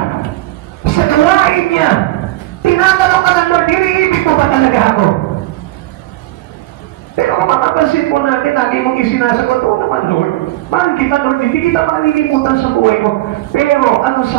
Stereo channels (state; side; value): quieter; left; 17.3 dB